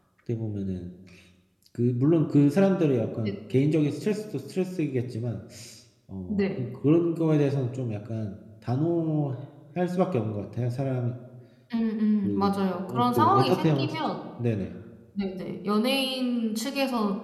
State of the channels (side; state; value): both; identical; correlation 1.00